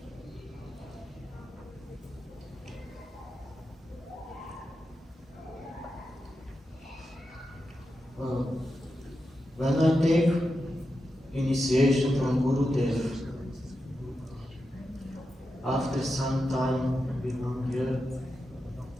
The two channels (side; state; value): both; normal; correlation 0.89